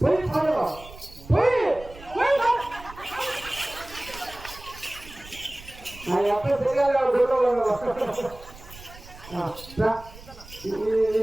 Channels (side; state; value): right; noise; rumble, 18 dB below the sound